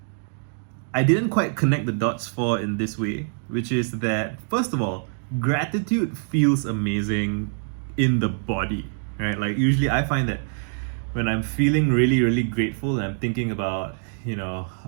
I didn't quite connect the dots for in this way, which is that, first of all, gratitude feels amazing in the body, right? Like, usually I find that when I'm feeling really, really grateful and I'm thinking about,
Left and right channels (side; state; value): left; silent; 62 dB below the other